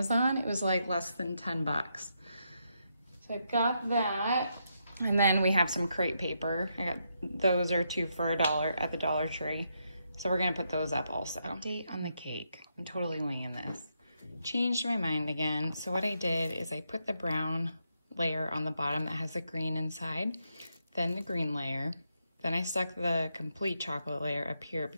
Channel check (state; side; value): inverted; both; correlation -0.81